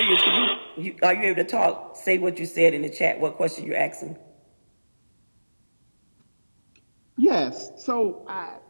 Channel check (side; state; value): both; inverted; correlation -1.00